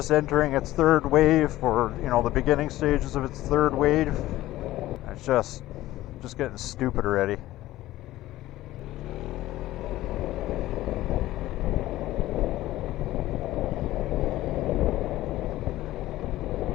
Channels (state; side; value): quieter; right; 15.8 dB